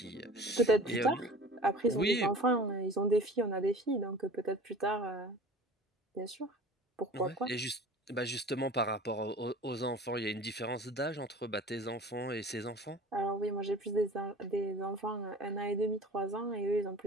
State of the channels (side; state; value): both; normal; correlation 0.41